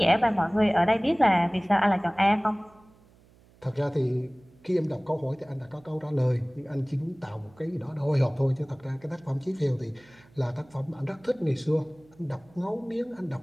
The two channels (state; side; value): noise; right; hum, 28 dB below the sound